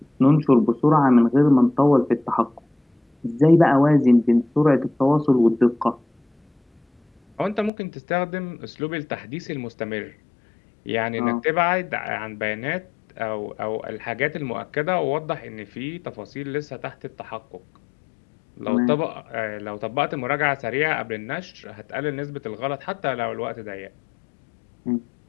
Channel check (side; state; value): right; drops out; at 7.7 s